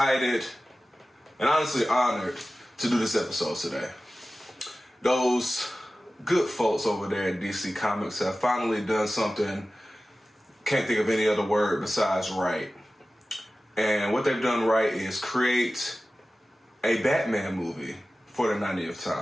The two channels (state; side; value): normal; both; correlation 0.96